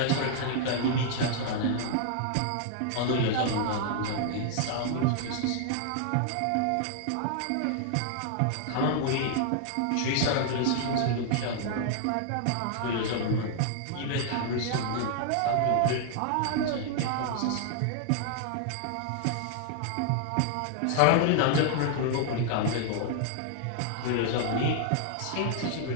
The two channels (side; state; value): both; different; correlation -0.01